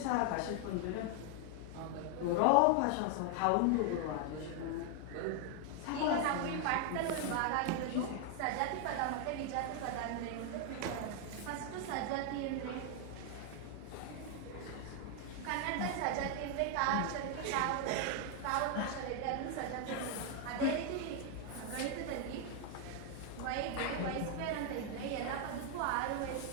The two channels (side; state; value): both; different; correlation 0.00